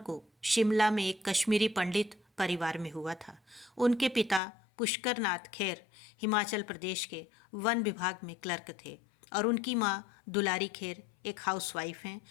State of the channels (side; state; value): right; drops out; at 4.4 s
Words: को शिमला में एक कश्मीरी पंडित परिवार में हुआ था। उनके पिता पुष्कर नाथ खेर हिमाचल प्रदेश के वन विभाग में क्लर्क थे और उनकी मां दुलारी खेर एक हाउसवाइफ हैं।